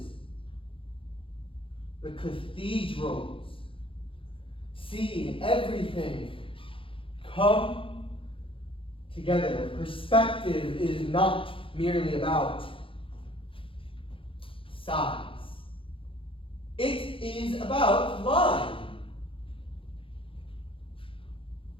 the cathedrals, see everything come together. Perspective is not merely about size. It is about line,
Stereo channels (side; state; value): right; late; 0.26 ms